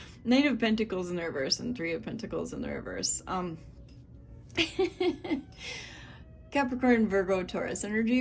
Knight of Pentacles in the reverse and Three of Pentacles in the reverse. Capricorn, Virgo, Taurus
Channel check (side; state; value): both; identical; correlation 1.00